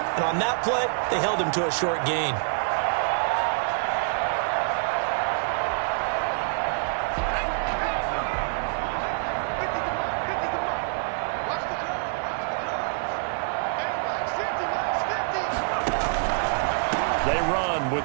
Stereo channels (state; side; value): silent; left; digital silence